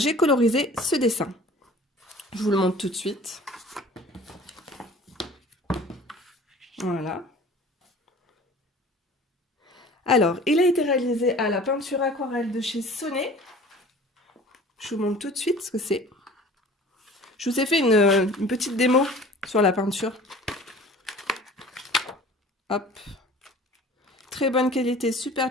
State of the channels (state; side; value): normal; both; correlation 0.45